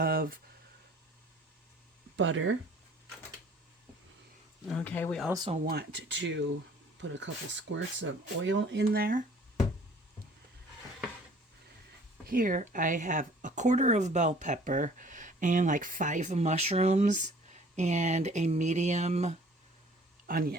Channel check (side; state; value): both; normal; correlation 0.53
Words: butter. Okay, we also want to put a couple squirts of oil in there. Here I have a quarter of bell pepper and like 5 mushrooms and a medium